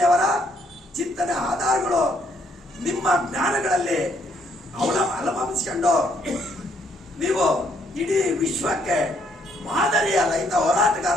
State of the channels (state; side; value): normal; both; correlation 0.70